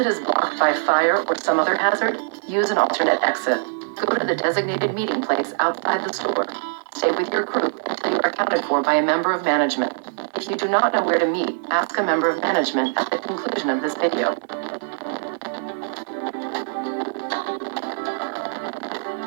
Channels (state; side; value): silent; left; digital silence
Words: is blocked by fire or some other hazard, use an alternate exit. Go to the designated meeting place outside the store. Stay with your group until you are accounted for by a member of management. If you do not know where to meet, ask a member of management at the conclusion of this video.